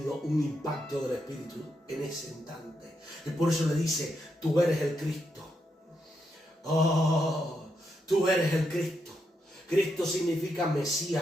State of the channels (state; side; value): normal; both; correlation 0.82